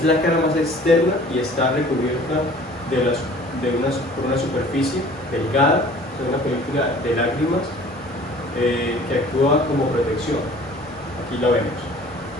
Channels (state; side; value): normal; both; correlation 0.49